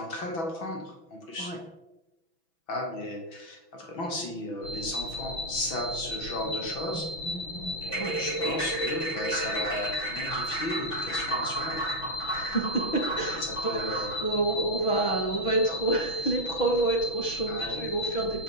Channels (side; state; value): right; late; 6.1 ms